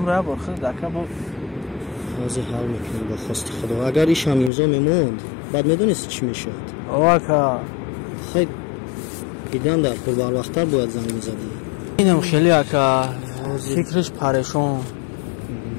борхид ака бо ҳозир ҳал мекунем ба хости худо. Агар ишам имзо мемонд баъд медонисти чӣ мешавад? о ака хай идан дар кор барвақттар бояд занг мезадӣ. инам хеле ака фикриш парешон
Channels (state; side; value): drops out; right; at 4.5 s